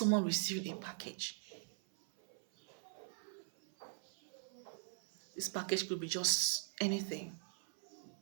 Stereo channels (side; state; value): left; silent; 50 dB below the other